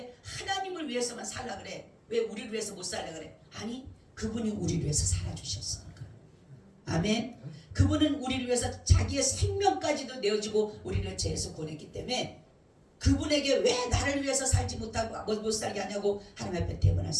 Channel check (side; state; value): both; identical; correlation 1.00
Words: 하나님을 위해서만 살라 그래? 왜 우리를 위해서 못 살라 그래? 아니, 그분이 우리를 위해서 살아주셨으니까. 아멘. 그분은 우리를 위해서 자기의 생명까지도 내어주고 우리를 죄에서 구원했기 때문에 그분에게 왜 나를 위해서 살지 못하고 못 살게 하냐고 하나님 앞에 대변할